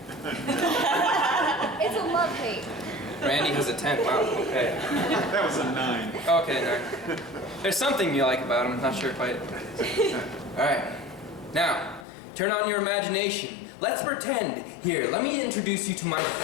It's a love-hate. Randy has a 10, wow, okay. That was a 9. Okay, 9. There's something you like about him, not sure quite. Alright, now, turn on your imagination. Let's pretend. Here, let me introduce you to my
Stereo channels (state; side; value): drops out; right; at 12.1 s